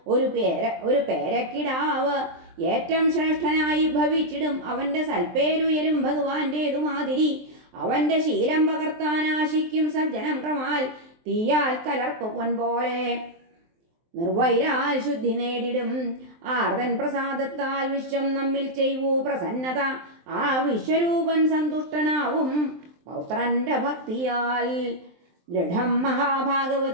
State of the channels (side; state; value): left; late; 23 ms